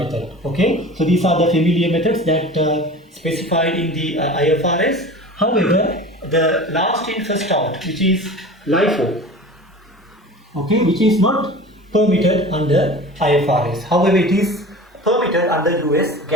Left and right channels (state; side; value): normal; both; correlation 0.37